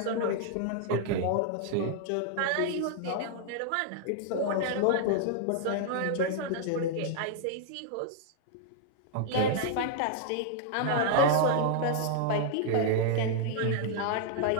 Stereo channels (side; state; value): both; different; correlation -0.01